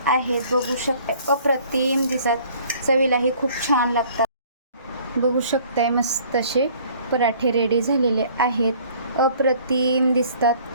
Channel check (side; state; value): both; inverted; correlation -0.55